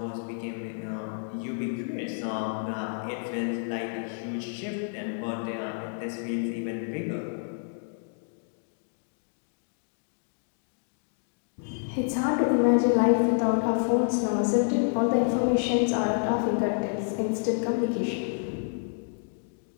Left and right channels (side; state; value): right; silent; digital silence